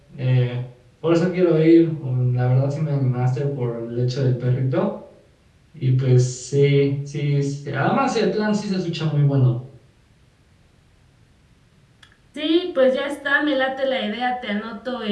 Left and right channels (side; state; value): both; identical; correlation 1.00